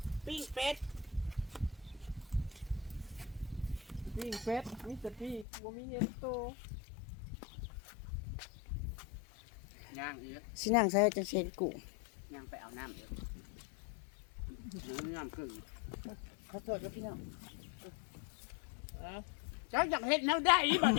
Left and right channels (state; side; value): drops out; right; at 5.5 s